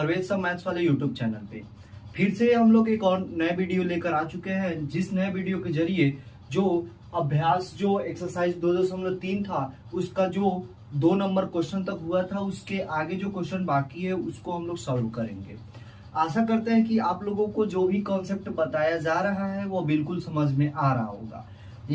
सर मैथ्स वाले यूट्यूब चैनल पे। फिर से हम लोग एक और नए वीडियो लेकर आ चुके हैं, जिस नए वीडियो के जरिए जो अभ्यास जो एक्सरसाइज 2.3 था उसका जो 2 नंबर क्वेश्चन तक हुआ था, उसके आगे जो क्वेश्चन बाकी है उसको हम लोग सॉल्व करेंगे। आशा करते हैं कि आप लोगों को जो भी कॉन्सेप्ट बताया जा रहा है वो बिल्कुल समझ में आ रहा होगा।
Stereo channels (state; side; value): identical; both; correlation 1.00